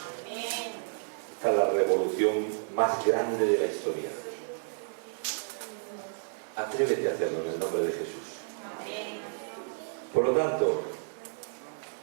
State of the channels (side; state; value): left; silent; digital silence